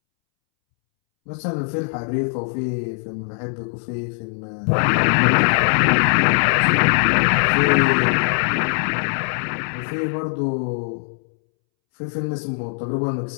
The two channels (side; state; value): right; silent; 65 dB below the other